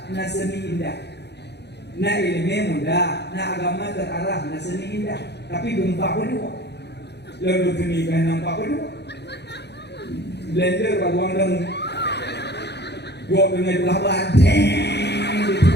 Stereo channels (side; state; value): right; late; 0.49 ms